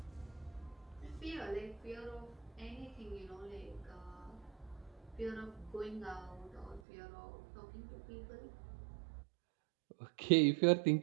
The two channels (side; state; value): left; drops out; at 6.8 s